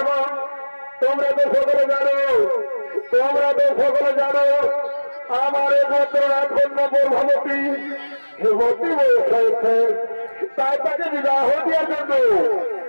তোমরা তো সকলে জানো আমার একমাত্র রাজকন্যা প্রভাবতী যুবতী বয়স হয়েছে, তাই তাকে বিবাহ দেওয়ার জন্য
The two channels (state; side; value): inverted; both; correlation -1.00